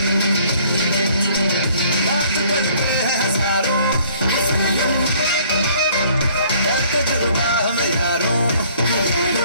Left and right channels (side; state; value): both; inverted; correlation -0.58